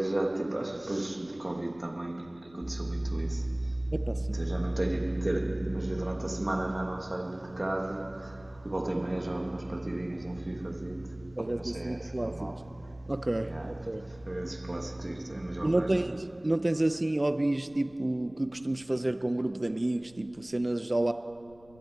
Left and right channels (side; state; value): left; noise; rumble, 25 dB below the sound